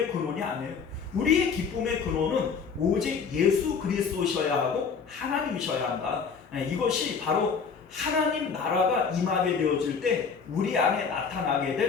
근원이 아니에요. 우리의 기쁨의 근원은 오직 예수 그리스도셔야 하고 하나님이셔야 한다. 이것이 바로 하나님 나라가 임하게 되어질 때 우리 안에 나타나게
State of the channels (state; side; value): quieter; right; 5.8 dB